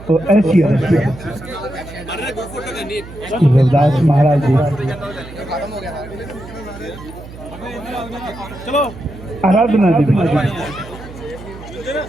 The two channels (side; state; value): right; noise; hum, 15 dB below the sound